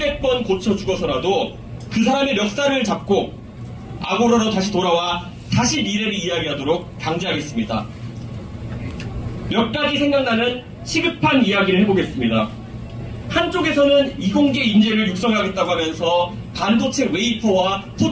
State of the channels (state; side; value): identical; both; correlation 1.00